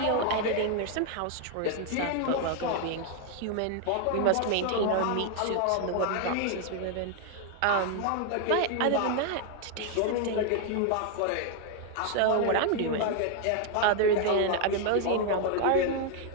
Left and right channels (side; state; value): both; different; correlation 0.00